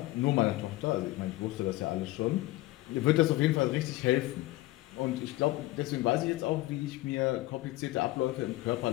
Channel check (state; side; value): quieter; right; 18.2 dB